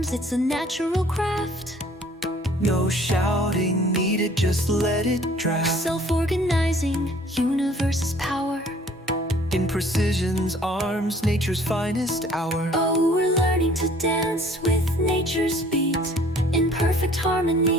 it's a natural craft. No shouting needed, just let it draft. Self-organizing, universe's power. In precision's arms, nature's finest hour. Oh, we're learning to dance with nature's beat, in perfect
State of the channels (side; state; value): both; normal; correlation 0.55